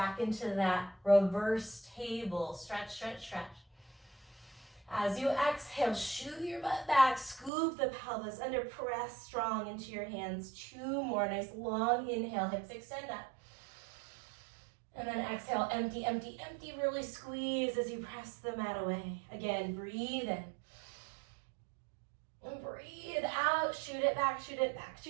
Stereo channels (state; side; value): drops out; left; at 7.5 s